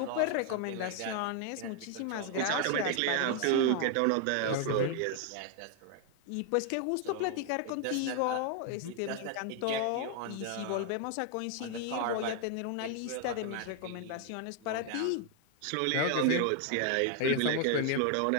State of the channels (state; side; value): different; both; correlation 0.00